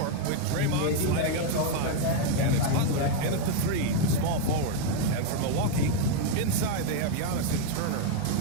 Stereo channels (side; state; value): both; different; correlation 0.01